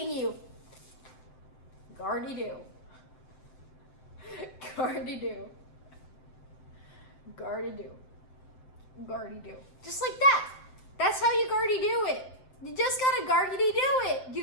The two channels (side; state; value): right; late; 7.8 ms